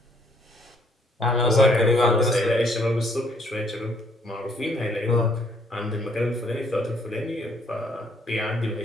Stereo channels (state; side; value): normal; both; correlation 0.66